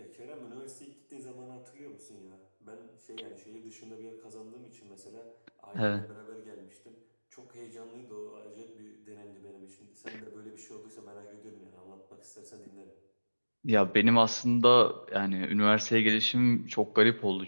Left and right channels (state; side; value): inverted; both; correlation -1.00